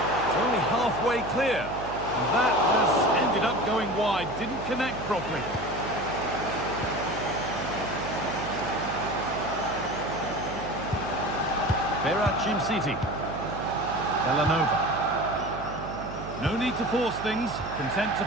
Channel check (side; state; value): right; noise; hum, 10 dB below the sound